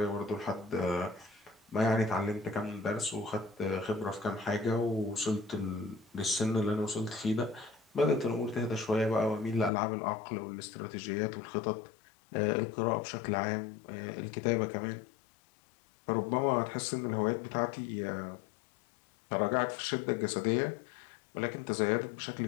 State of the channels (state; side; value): drops out; right; at 9.7 s